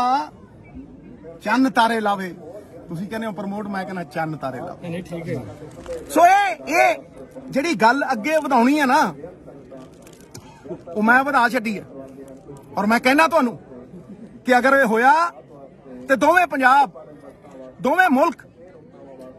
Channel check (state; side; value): identical; both; correlation 1.00